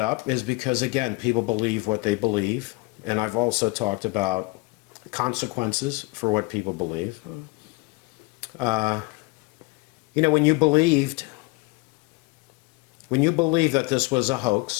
up is because, again, people believe what they believe. And I've also talked about consequences for what people believe. You know, when you believed that this was a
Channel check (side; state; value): right; quieter; 25.4 dB